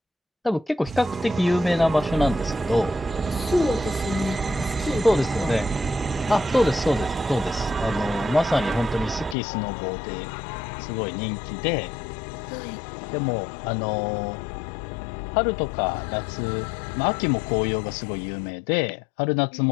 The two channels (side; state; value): right; drops out; at 9.3 s